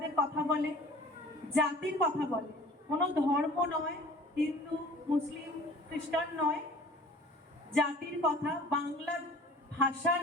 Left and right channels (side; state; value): both; normal; correlation 0.46